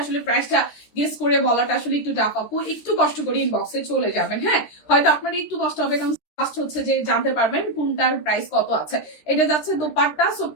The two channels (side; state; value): right; late; 13 ms